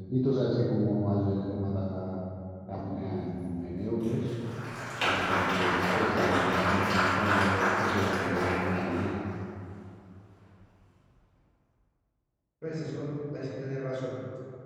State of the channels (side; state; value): both; identical; correlation 1.00